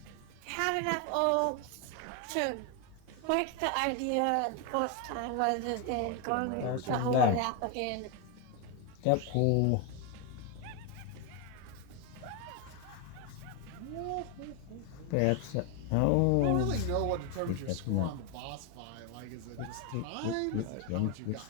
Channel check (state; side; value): different; both; correlation 0.01